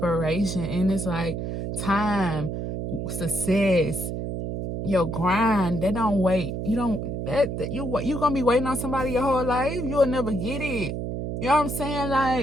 and it's like time, success, your grind. They don't wait. You're gonna be waiting on somebody your whole life. You'll never get it. You know what I'm saying?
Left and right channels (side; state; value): right; noise; hum, 4 dB below the sound